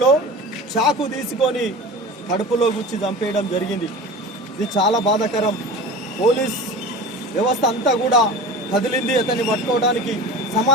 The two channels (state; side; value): normal; both; correlation 0.34